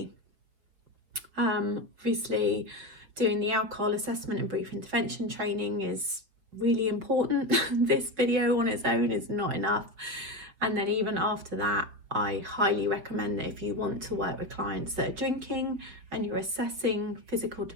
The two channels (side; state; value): left; late; 5.5 ms